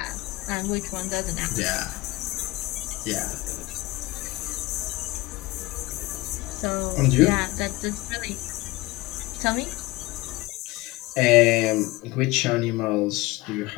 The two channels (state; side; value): quieter; right; 20.9 dB